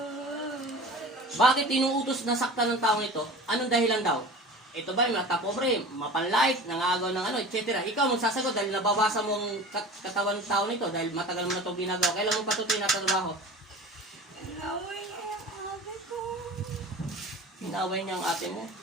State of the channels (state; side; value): normal; both; correlation 0.37